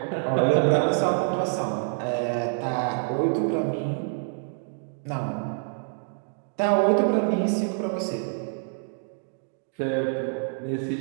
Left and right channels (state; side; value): silent; left; digital silence